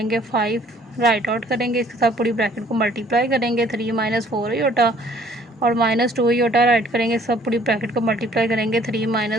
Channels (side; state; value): both; normal; correlation 0.58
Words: 5 राइट आउट करेंगे, इसके साथ पूरी ब्रैकेट को मल्टीप्लाई करेंगे, 3 माइनस 4 योटा और -2 योटा राइट करेंगे, सब पूरी ब्रैकेट को मल्टीप्लाई करेंगे 3